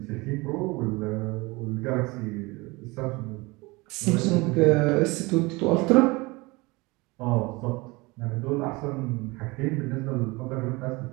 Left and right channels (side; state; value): left; quieter; 24.1 dB